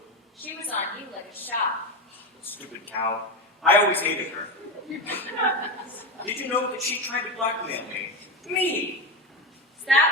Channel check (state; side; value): normal; both; correlation 0.17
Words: She was on you like a shot. Stupid cow. I always hated her. Did you know that she tried to blackmail me? Me! Is